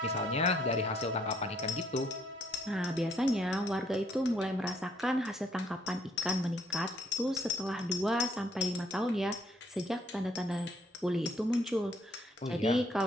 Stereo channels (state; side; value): normal; both; correlation 0.66